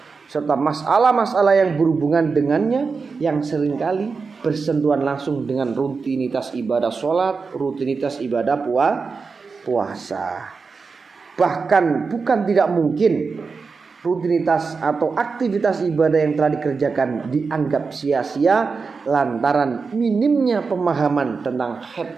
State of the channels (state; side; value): quieter; left; 4.8 dB